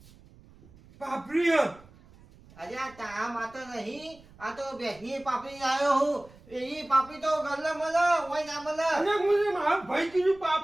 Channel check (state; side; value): noise; right; rumble, 24 dB below the sound